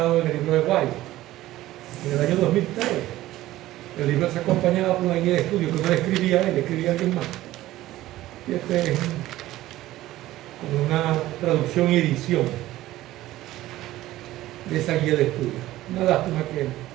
en el libro de White. En el año 2003, el libro se acompañaba por una guía de estudio que no le escribía él, le escribía alguien más. Y este es como una traducción y edición de esa guía de estudio. Una lástima que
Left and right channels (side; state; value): left; quieter; 15.7 dB